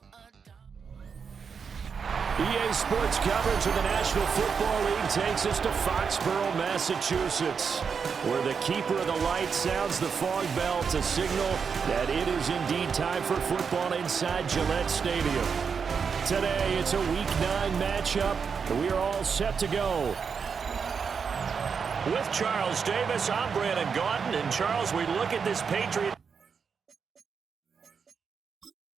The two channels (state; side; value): quieter; left; 6.1 dB